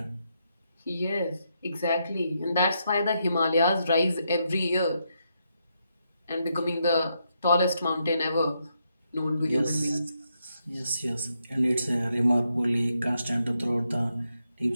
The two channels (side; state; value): both; inverted; correlation -0.80